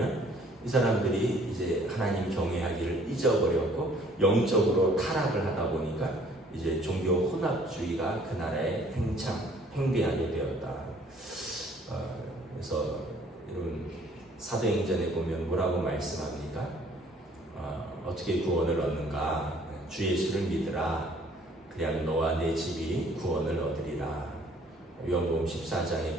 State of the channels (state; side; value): normal; both; correlation 0.58